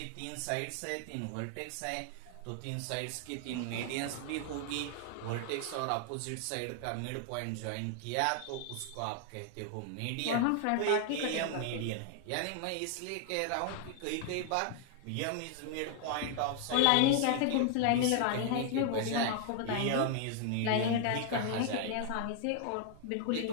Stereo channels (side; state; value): both; different; correlation 0.00